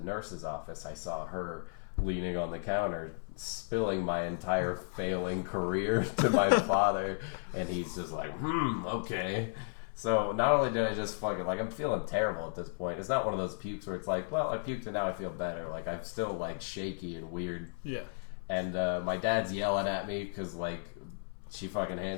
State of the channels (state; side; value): silent; right; 55 dB below the other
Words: office, I saw her leaning on the counter, spilling my entire failing career to my father. And he's just like, okay. So not only did I just fucking, I'm feeling terrible at this point. It's not one of those pukes where it's like, well, I puked and now I feel better. I'm still shaky and weird. Yeah. And my dad's yelling at me because she fucking